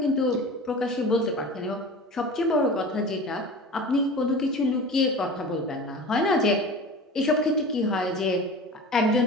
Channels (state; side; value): normal; both; correlation 0.35